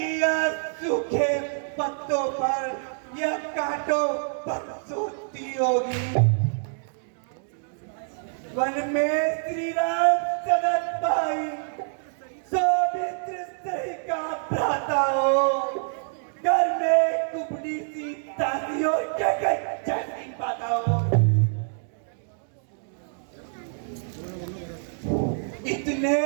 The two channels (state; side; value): silent; left; digital silence